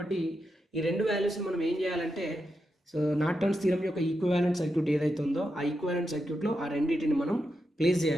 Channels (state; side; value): normal; both; correlation 0.86